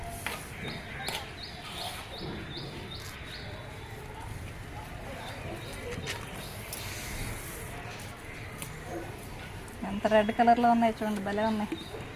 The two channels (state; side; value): identical; both; correlation 1.00